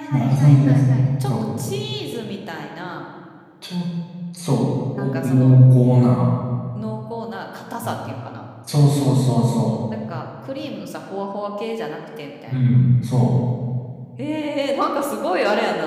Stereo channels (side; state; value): both; identical; correlation 1.00